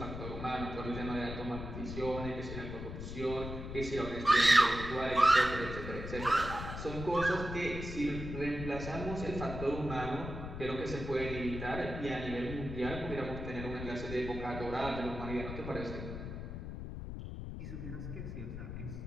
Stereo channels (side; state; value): left; noise; rumble, 7 dB below the sound